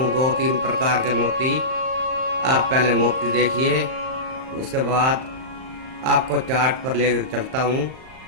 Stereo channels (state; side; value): late; left; 38 ms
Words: 2-3 प्रकार के मोती। आप पहले मोती देखिए, उसके बाद आपको चार्ट पर लेकर चलता हूँ